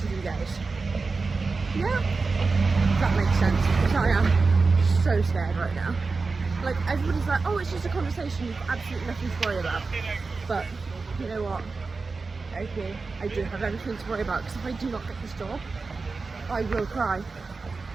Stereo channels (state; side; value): quieter; left; 4.2 dB